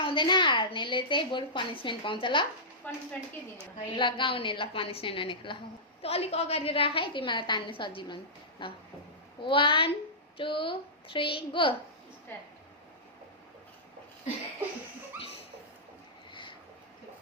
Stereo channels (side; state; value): both; normal; correlation -0.16